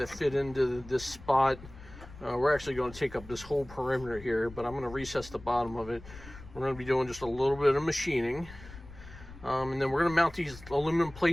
fit into this spot. We're actually going to take up this whole perimeter here, but I'm going to recess the bottom of it. We're going to be doing just a little bit of machining. And then we're going to mount these aluminum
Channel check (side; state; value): left; noise; rumble, 17 dB below the sound